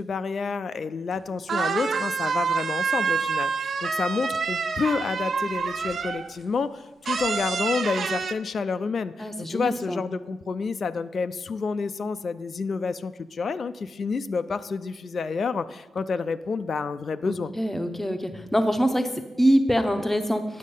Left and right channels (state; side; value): normal; both; correlation 0.86